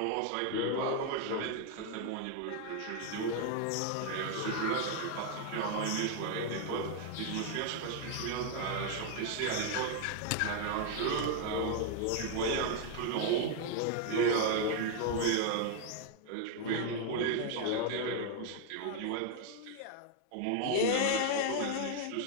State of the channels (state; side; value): different; both; correlation 0.01